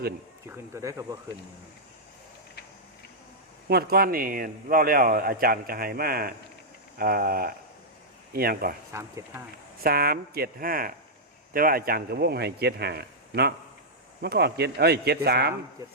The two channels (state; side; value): normal; both; correlation -0.08